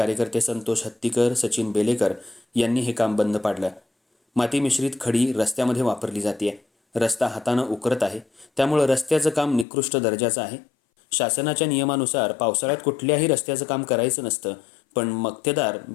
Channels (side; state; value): right; drops out; at 9.7 s